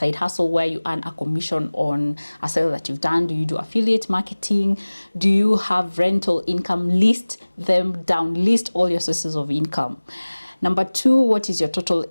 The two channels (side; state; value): both; inverted; correlation -1.00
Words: hustle where you earn a commission on a sale that you've done? Do you do affiliate marketing? Do you have rental income? List them down. List all your sources of income. Number 2, what is your total